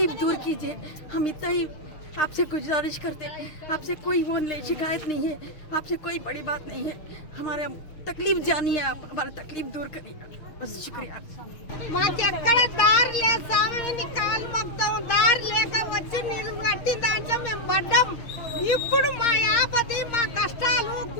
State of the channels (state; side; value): late; right; 6.4 ms